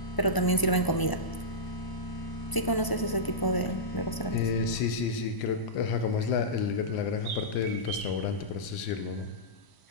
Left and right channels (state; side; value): late; right; 1.0 ms